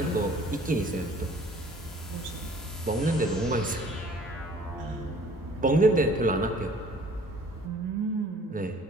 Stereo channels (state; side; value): normal; both; correlation 0.53